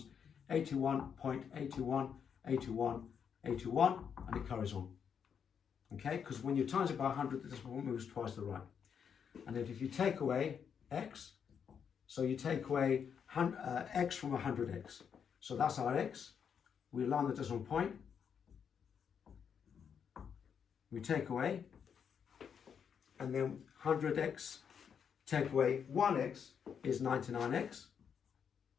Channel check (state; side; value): quieter; right; 7.3 dB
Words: 81.81, 81, 81, and it carries on. Okay, because when you times it by 100, the decimal point moves twice to the right. And then if you take away x, so you take away x from 100x. So that's our x. We align the decimal point. We take away, and then 100x, take away 1x is 99x.